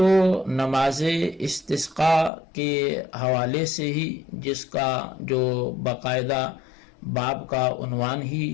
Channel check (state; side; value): drops out; right; at 2.3 s